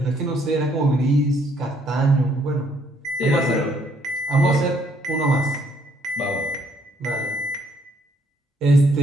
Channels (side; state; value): both; normal; correlation 0.68